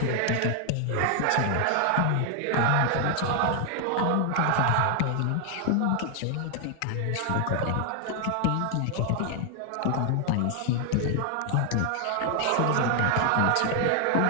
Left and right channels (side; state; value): both; different; correlation 0.00